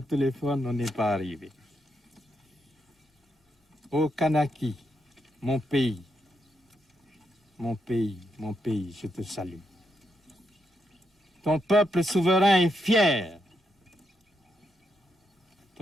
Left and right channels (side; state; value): both; normal; correlation 0.81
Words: on n'est pas arrivé. Ô Kanaki, mon pays, mon pays, mon pays, je te salue. Ton peuple souverain est fier.